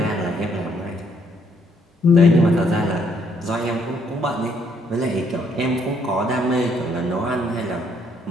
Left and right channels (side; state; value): both; normal; correlation 0.69